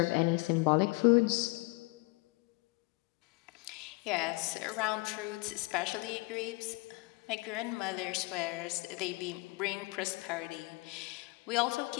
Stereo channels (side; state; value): right; quieter; 25.9 dB